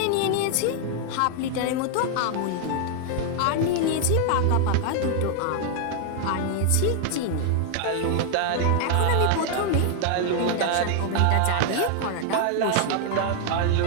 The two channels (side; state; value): both; different; correlation 0.00